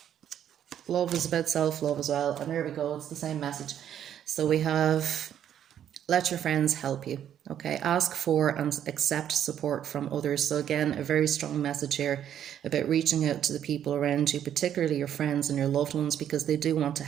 love is about self-love as well. And there we go, it's the same message. So we have, let your friends help you. Okay, ask for and accept support from others. So again, a very strong message here about reaching out to the people around you, particularly your friends and your loved ones, because they do want to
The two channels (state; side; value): quieter; left; 10.0 dB